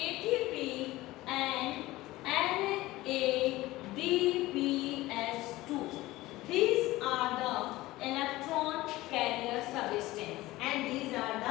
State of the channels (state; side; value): quieter; right; 18.1 dB